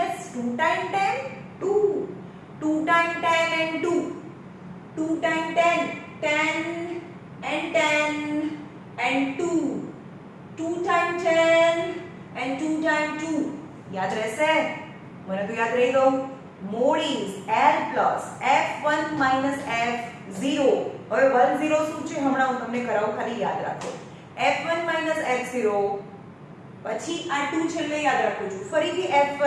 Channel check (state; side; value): identical; both; correlation 1.00